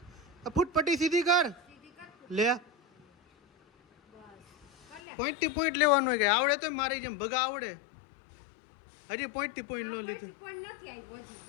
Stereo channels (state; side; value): drops out; right; at 5.0 s